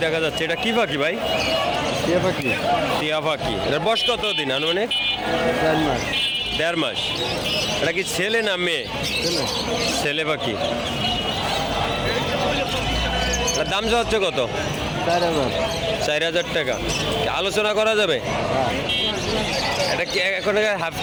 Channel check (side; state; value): both; identical; correlation 1.00